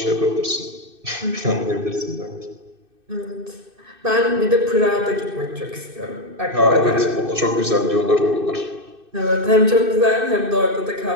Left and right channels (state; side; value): late; left; 2.6 ms